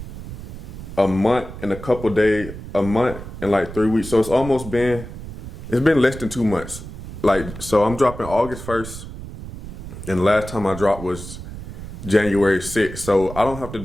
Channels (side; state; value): right; noise; rumble, 11 dB below the sound